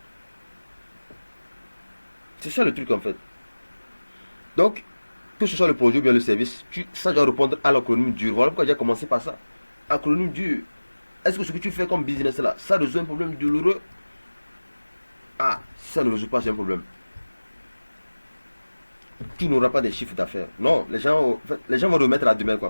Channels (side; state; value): both; inverted; correlation -1.00